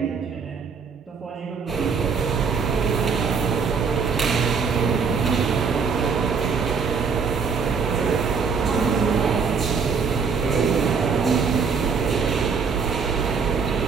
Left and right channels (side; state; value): left; quieter; 5.6 dB